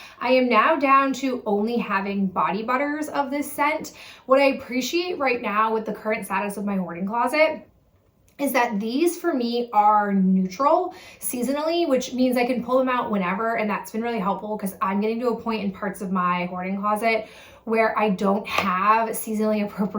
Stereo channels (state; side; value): identical; both; correlation 1.00